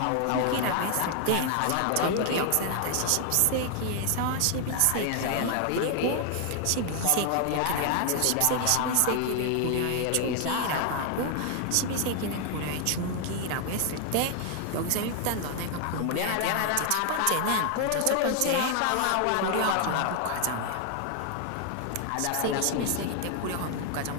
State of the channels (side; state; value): both; different; correlation 0.00